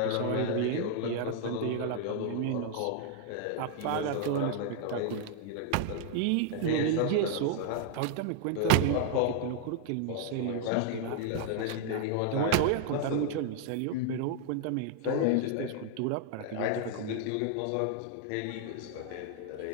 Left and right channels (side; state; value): both; different; correlation 0.00